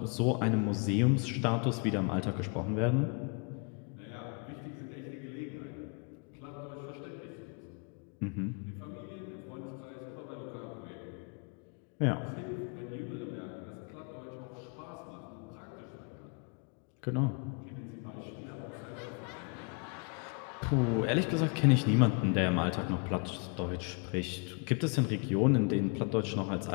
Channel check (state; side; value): quieter; right; 36.2 dB